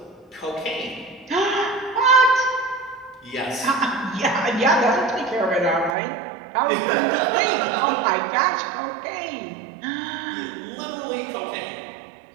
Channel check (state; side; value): drops out; left; at 6.0 s